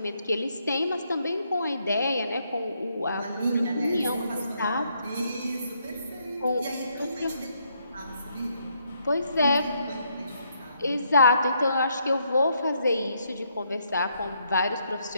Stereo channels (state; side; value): inverted; both; correlation -0.74